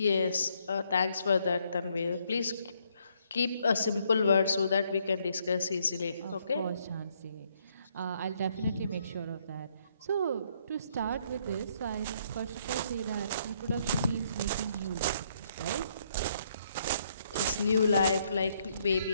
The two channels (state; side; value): inverted; both; correlation -0.71